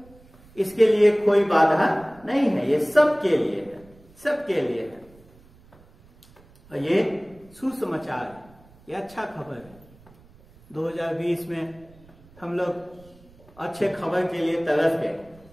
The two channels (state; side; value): noise; right; rumble, 26 dB below the sound